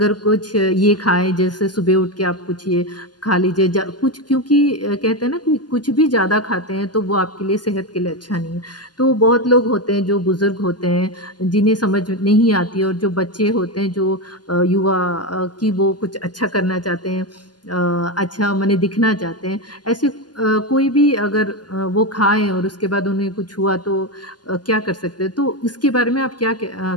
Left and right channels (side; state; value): right; late; 0.70 ms